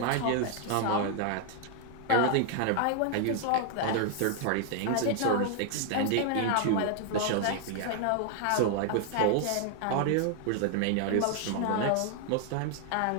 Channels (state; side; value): different; both; correlation 0.00